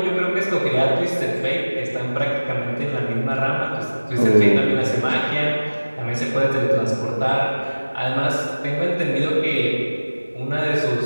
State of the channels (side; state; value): both; inverted; correlation -1.00